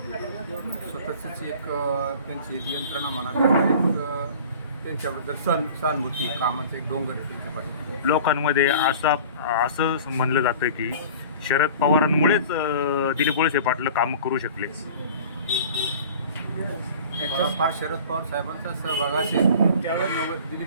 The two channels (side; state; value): both; inverted; correlation -0.42